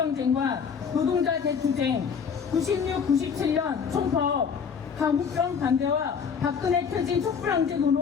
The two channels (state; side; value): quieter; right; 6.5 dB